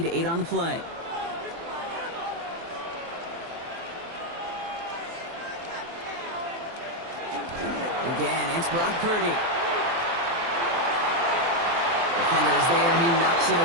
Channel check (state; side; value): late; left; 24 ms